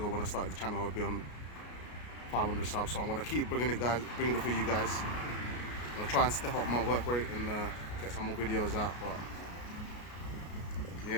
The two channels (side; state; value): right; late; 33 ms